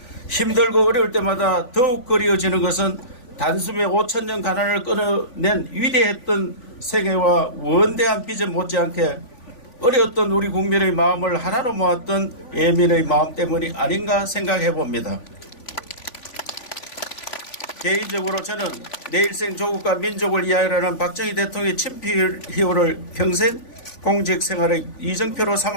힘들고 어려울 때마다 더욱 그리워지는 것은 단숨에 5천년 가난을 끊어낸 위대했던 생애와 원대한 비전 못지않게 어려웠던 우리 국민의 마음을 하나로 모았던 예민의 마음 때문이 아닌가 생각해 봅니다. 개인적으로 저는 내 일생 조국과 민족을 위하여라는 박정희 대통령의 친필희호를 평생 공직 생활의 이정표로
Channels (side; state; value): right; late; 3.5 ms